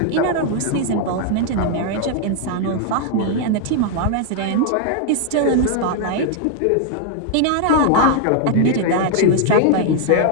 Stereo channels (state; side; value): different; both; correlation 0.00